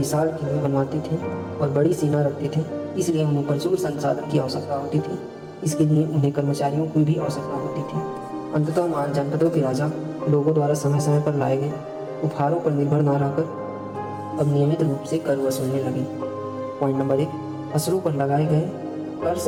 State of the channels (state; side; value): identical; both; correlation 1.00